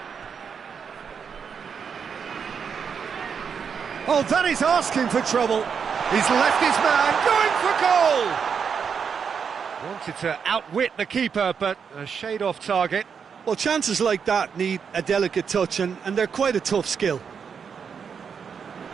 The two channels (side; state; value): left; quieter; 6.6 dB